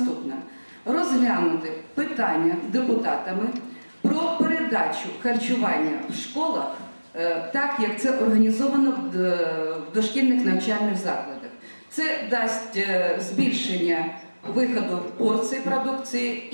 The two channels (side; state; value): both; inverted; correlation -1.00